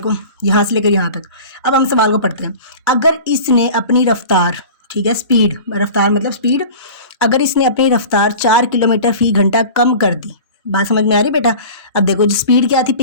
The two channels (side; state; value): both; inverted; correlation -0.38